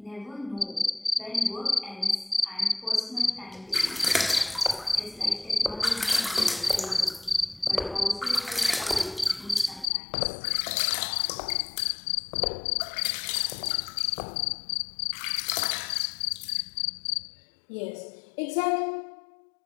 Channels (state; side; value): drops out; right; at 9.9 s